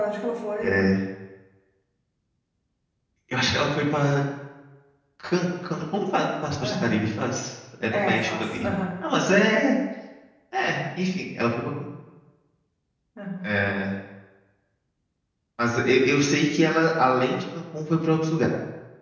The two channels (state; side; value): identical; both; correlation 1.00